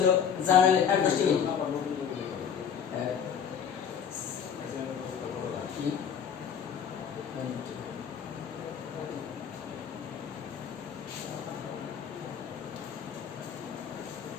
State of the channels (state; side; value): quieter; right; 7.7 dB